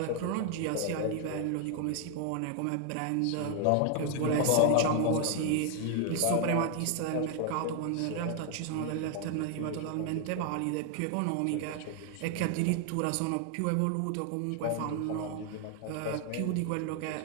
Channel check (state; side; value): different; both; correlation 0.00